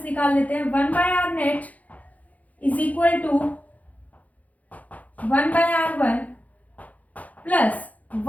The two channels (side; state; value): right; late; 0.074 ms